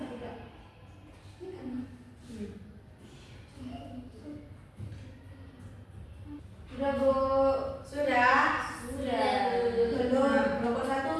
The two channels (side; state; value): both; identical; correlation 1.00